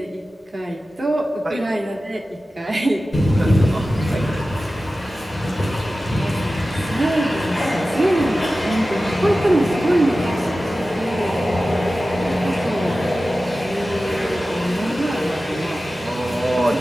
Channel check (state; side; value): normal; both; correlation 0.95